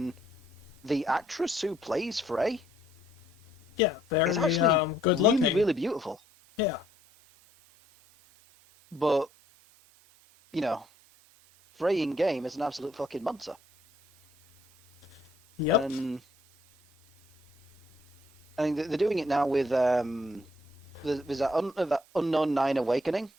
the actress who plays Frey Yeah, is very actually good really, looking. really beautiful. Yeah. But you know, Frey in game is an absolute fucking monster, Yep. and I mean they're doing it now with there's that Unknown Nine Awakening.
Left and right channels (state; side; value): normal; both; correlation 0.67